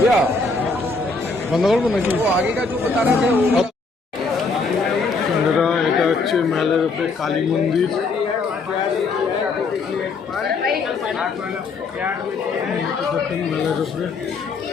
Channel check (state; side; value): quieter; right; 4.1 dB